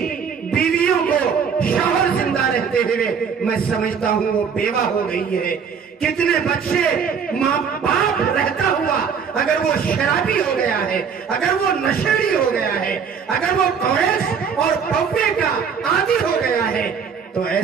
بیویوں کو شوہر زندہ رہتے ہوئے میں سمجھتا ہوں وہ بیوہ ہو گئی ہے، کتنے بچے ماں باپ رہتا ہوا اگر وہ شرابی ہو گیا ہے، اگر وہ نشیڑی ہو گیا ہے، اگر وہ کوریز اور پوپے کا عادی ہو گیا ہے، تو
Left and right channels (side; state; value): left; quieter; 6.6 dB